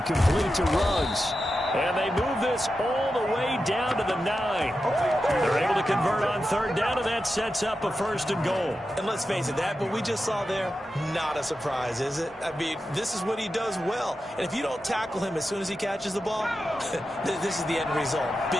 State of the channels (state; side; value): normal; both; correlation 0.90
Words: complete to Ruggs. And they move this all the way down to the 9. They're able to convert on third down, and that sets up a 1st and goal. And let's face it, that what we just saw there, not a surprise, is it? I mean, this is what he does well. And if you don't tackle him as soon as he catches the ball, this is the end result.